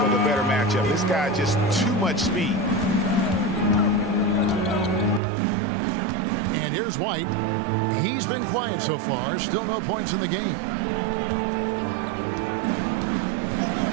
with a better matchup. This guy just too much speed. And here's White. He's been quiet so far. Still no points in the game.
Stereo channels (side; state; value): left; drops out; at 5.2 s